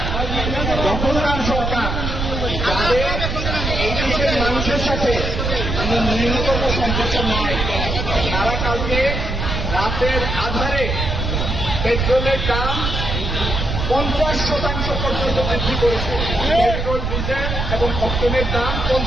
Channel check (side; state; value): right; noise; rumble, 2 dB below the sound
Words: দখলদার সরকার, তাদের এই দেশের মানুষের সাথে ন্যূনতম সম্পর্ক নয়। তারা কালকে রাতের আধারে পেট্রোলের দাম 50% পর্যন্ত বৃদ্ধি করেছে। পেট্রোল, ডিজেল এবং অক্টেনের দাম